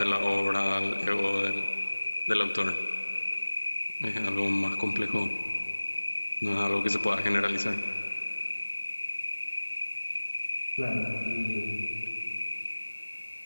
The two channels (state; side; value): inverted; both; correlation -1.00